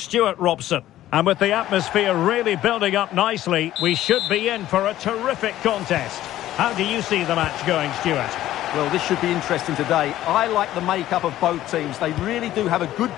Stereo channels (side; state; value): right; quieter; 13.8 dB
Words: Robson. And with the atmosphere really building up nicely, we should be in for a terrific contest. How do you see the match going, Stuart? Well, this should be interesting today. I like the makeup of both teams. They really do have a good